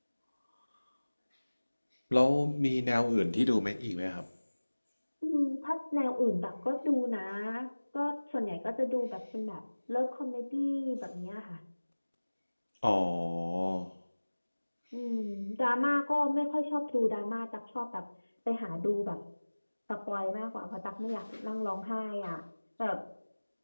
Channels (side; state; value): both; inverted; correlation -1.00